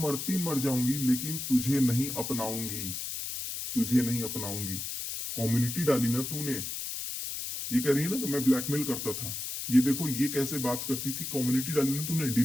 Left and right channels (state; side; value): noise; left; hiss, 5 dB below the sound